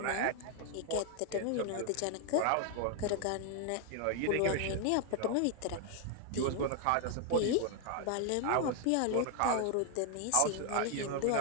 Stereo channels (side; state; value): both; different; correlation 0.00